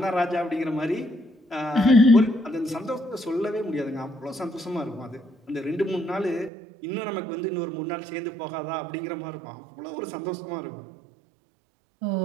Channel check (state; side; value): drops out; left; at 6.5 s